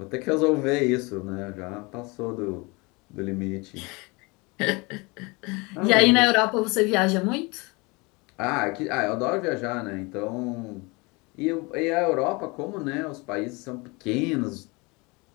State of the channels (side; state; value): right; quieter; 26.8 dB